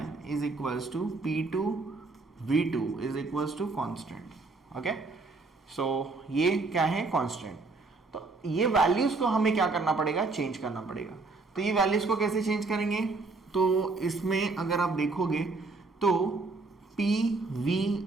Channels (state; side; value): quieter; left; 3.7 dB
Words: is equals to P2 V2 is equals to constant. Okay so ये क्या है, कांस्टेंट। तो ये वैल्यूज को हमें क्या करना पड़ेगा, चेंज करना पड़ेगा। तो ये वैल्यूज को कैसे चेंज करेंगे, तो इसमें अगर आप देखोगे तो PV